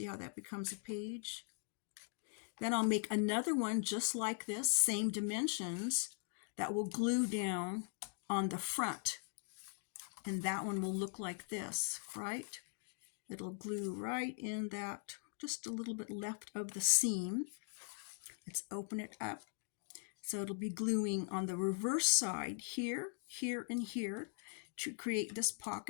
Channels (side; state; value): right; silent; 51 dB below the other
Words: how that becomes a page? Then I'll make another one just like this, same dimensions, that will glue down on the front. And that one will look like this, right? It'll glue right in that, just a little bit left of the seam. Let's open it up. So it'll be gluing on the reverse side here, here, and here to create this